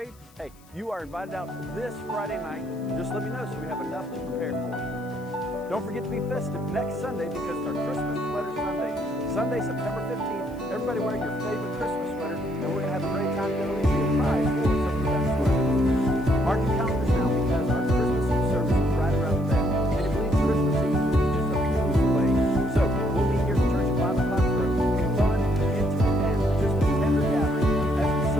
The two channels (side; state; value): left; noise; hiss, 29 dB below the sound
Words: hey, you are invited out this Friday night. Just let me know so we have enough to prepare for you. Don't forget to be festive next Sunday because it's our Christmas Sweater Sunday. Sunday, September 15th, everybody wear your favorite Christmas sweater, and we're going to have a great time together. We'll be a prize for some of the best sweaters. Mark your calendars now because our Christmas Eve service is right around the bend. And you believe Christmas Eve is just a few minutes away. So we'll be here at church at 5 o'clock for a fun, intimate, and just a tender gathering as we